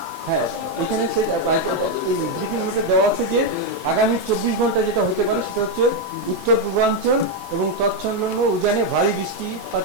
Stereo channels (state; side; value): noise; right; hiss, 22 dB below the sound